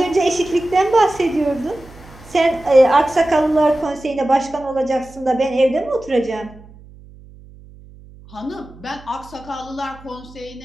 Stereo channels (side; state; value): right; noise; hum, 21 dB below the sound